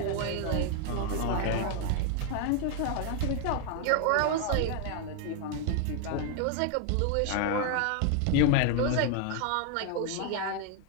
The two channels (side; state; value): both; different; correlation 0.00